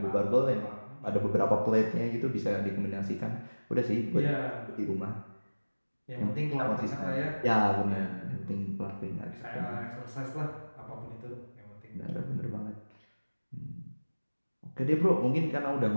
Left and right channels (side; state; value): both; inverted; correlation -1.00